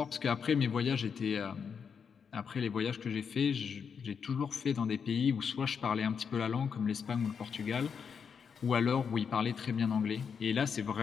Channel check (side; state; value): right; quieter; 6.5 dB